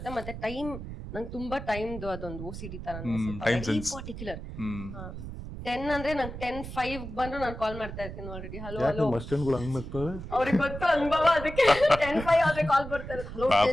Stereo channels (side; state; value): right; noise; rumble, 9 dB below the sound